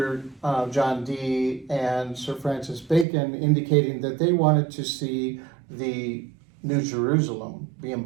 John Dee and Sir Francis Bacon indicating that they wanted to see the New Jerusalem be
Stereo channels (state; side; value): drops out; left; at 3.1 s